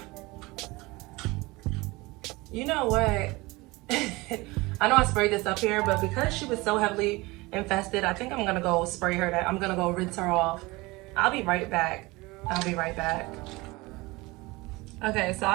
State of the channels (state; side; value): quieter; left; 22.6 dB